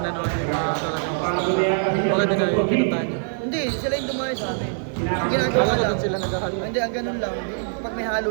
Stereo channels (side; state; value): left; silent; 58 dB below the other